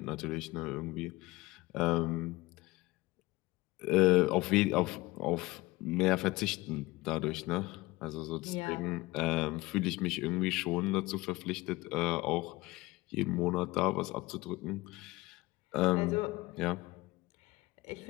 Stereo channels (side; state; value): right; quieter; 20.7 dB